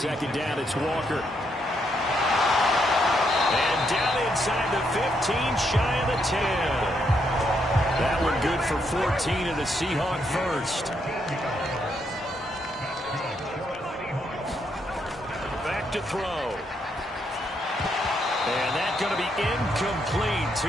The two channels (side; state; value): both; normal; correlation 0.77